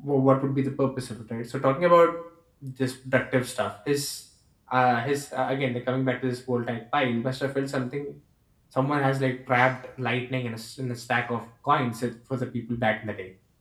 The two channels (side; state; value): both; identical; correlation 1.00